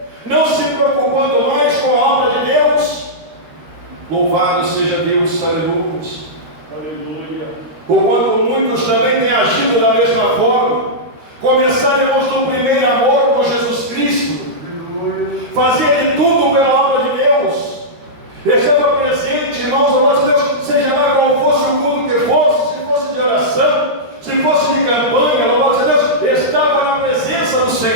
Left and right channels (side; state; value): left; late; 13 ms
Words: não se preocupando mais com a obra de Deus. Louvado seja Deus, aleluia. Aleluia. Porquanto muitos também têm agido da mesma forma, começaram, irmãos, no primeiro amor com Jesus Cristo, fazia de tudo pela obra de Deus, estava presente, irmãos, louvado seja Deus, seja lá qual fosse o culto que fosse, se fosse de oração, se fosse de campanha, louvado seja Deus, estava na presença do